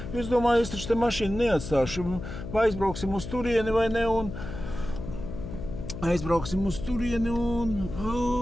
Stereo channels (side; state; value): left; noise; hum, 9 dB below the sound